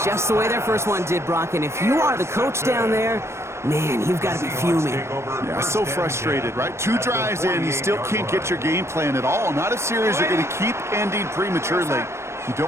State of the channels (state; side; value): late; left; 0.13 ms